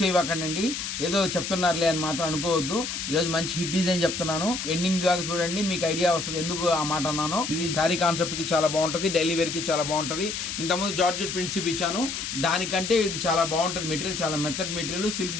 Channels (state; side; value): noise; left; hiss, 5 dB below the sound